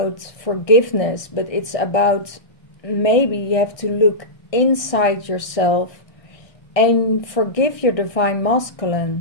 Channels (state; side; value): late; right; 1.6 ms